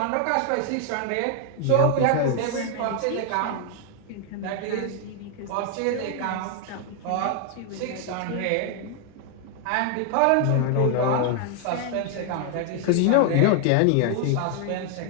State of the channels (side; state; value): both; different; correlation 0.00